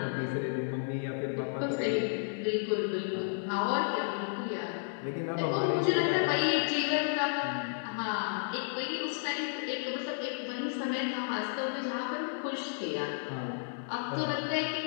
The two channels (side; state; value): right; silent; digital silence